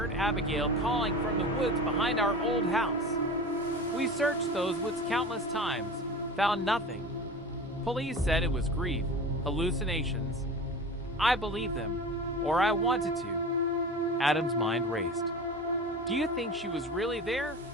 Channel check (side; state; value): both; normal; correlation 0.34